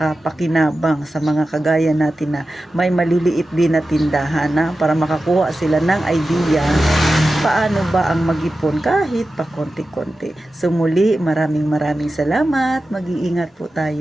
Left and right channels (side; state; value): both; normal; correlation 0.93